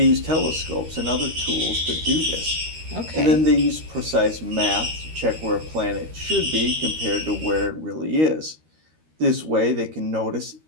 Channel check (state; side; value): late; left; 13 ms